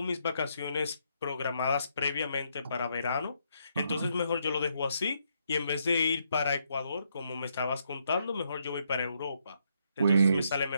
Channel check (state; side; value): inverted; both; correlation -0.76